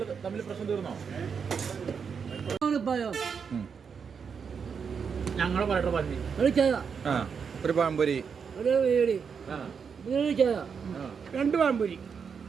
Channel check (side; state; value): left; quieter; 6.3 dB